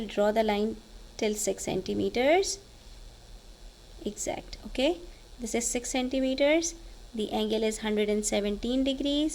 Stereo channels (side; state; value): both; identical; correlation 1.00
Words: draw the line till 6 centimeters. Exact. Okay, this is 6 centimeters. The angle is 117